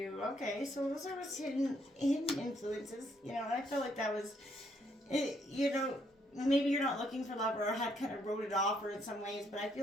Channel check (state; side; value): normal; both; correlation 0.71